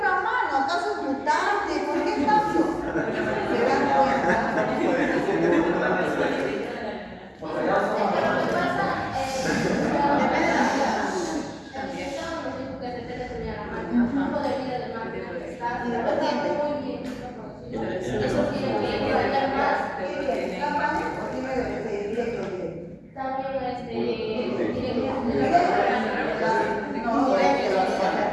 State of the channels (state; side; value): identical; both; correlation 1.00